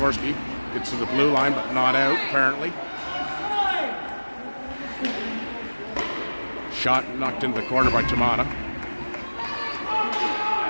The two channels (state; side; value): inverted; both; correlation -1.00